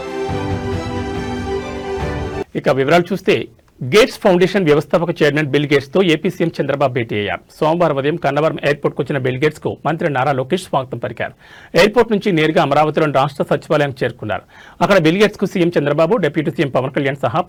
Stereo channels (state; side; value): identical; both; correlation 1.00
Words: ఇక వివరాలు చూస్తే, గేట్స్ ఫౌండేషన్ వ్యవస్థాపక చైర్మన్ బిల్ గేట్స్ తో ఏపీ సీఎం చంద్రబాబు భేటీ అయ్యారు. సోమవారం ఉదయం కన్నవరం ఎయిర్పోర్ట్ కు వచ్చిన బిల్ గేట్స్ కు మంత్రి నారా లోకేష్ స్వాగతం పలికారు. ఎయిర్పోర్ట్ నుంచి నేరుగా అమరావతిలోని రాష్ట్ర సచివాలయానికి చేరుకున్నారు. అక్కడ బిల్ గేట్స్ కు CM Chandrababu, deputy CM Pawan Kalyan సహా